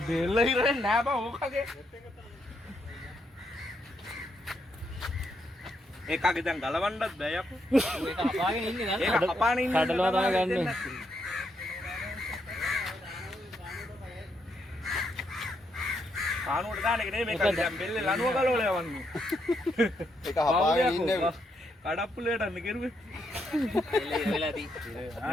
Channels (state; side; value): normal; both; correlation 0.78